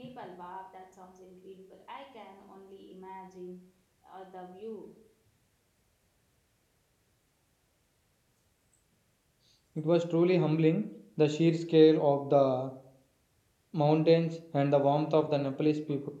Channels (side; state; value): both; identical; correlation 1.00